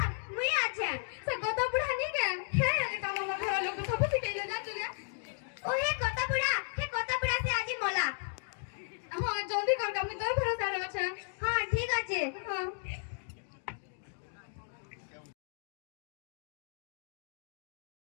মুই আছে সে কথা বুড়া নি কেন হ্যাঁ এটা আমার ঘর লোক সব শিখাইলে না তুই ও হে কত বুড়া সে আজি মোলা হ্যাঁ জলদি কর আমি তোর ভরসা আছে হ্যাঁ ঠিক আছে হ্যাঁ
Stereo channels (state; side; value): silent; right; digital silence